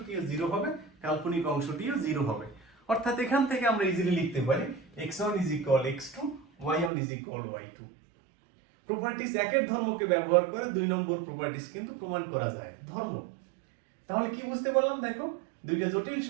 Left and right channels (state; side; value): drops out; left; at 6.9 s